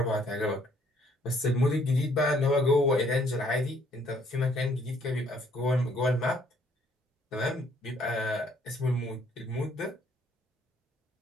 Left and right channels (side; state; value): both; normal; correlation 0.64